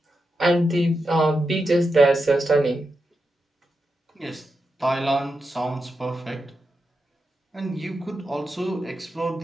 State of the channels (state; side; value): normal; both; correlation 0.87